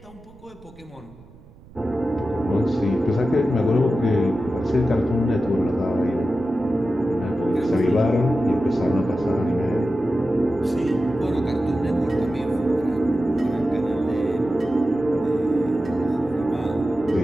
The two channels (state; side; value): noise; right; rumble, 23 dB below the sound